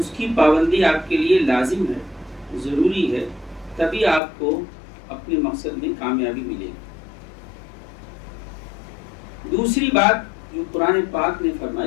کی پابندی آپ کے لیے لازم ہے، ضروری ہے، تبھی آپ کو اپنے مقصد میں کامیابی ملے گی۔ دوسری بات جو قرآن پاک نے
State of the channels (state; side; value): drops out; right; at 4.2 s